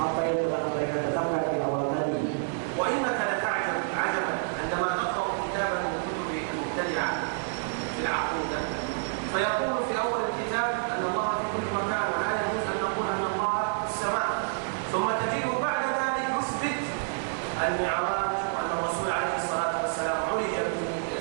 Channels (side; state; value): left; silent; digital silence